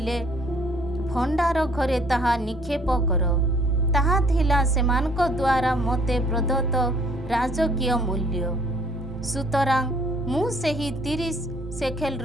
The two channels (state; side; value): normal; both; correlation 0.60